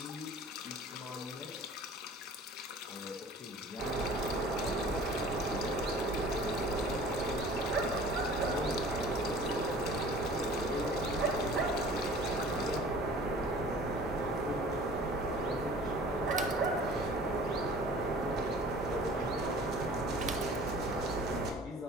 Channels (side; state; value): both; normal; correlation 0.46